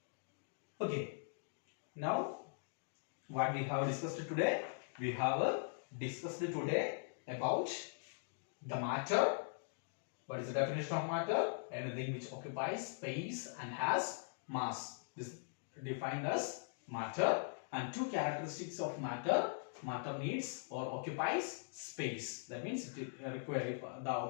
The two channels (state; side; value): silent; right; digital silence